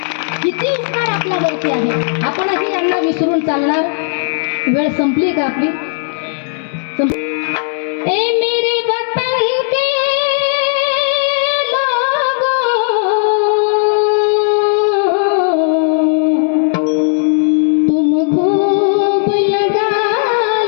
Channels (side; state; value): right; silent; digital silence